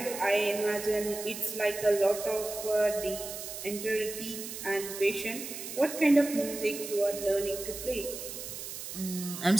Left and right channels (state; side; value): noise; right; hiss, 8 dB below the sound